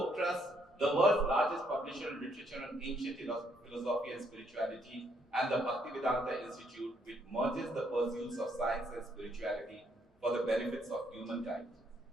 Trust, the world's largest publisher of literature on ancient philosophy and spirituality, and the Bhaktivedanta Institute, which merges the pursuits of science and spirituality for the benefits of humankind.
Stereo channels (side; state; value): both; normal; correlation 0.72